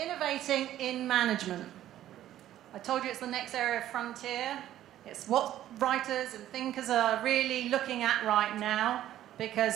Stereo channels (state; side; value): quieter; left; 12.6 dB